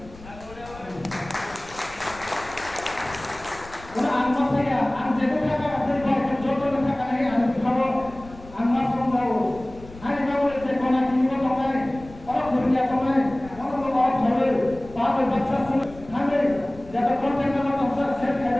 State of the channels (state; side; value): noise; left; rumble, 19 dB below the sound